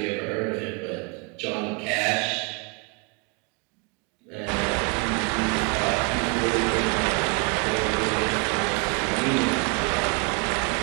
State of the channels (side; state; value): left; quieter; 32.2 dB